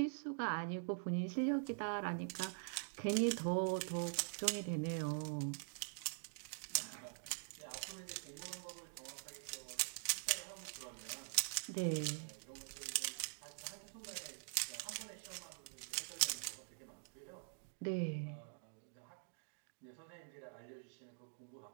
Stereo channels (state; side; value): silent; left; digital silence